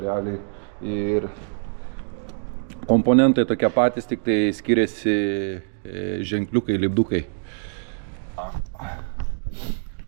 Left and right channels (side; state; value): left; silent; digital silence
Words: realiai ir komponentai tokie patys, tik tai skiriasi ženkliukai, lipdukai.